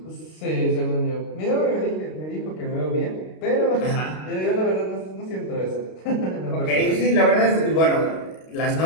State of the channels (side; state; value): right; late; 32 ms